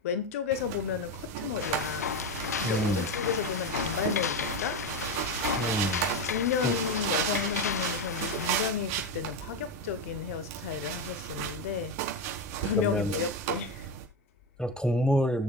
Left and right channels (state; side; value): normal; both; correlation 0.15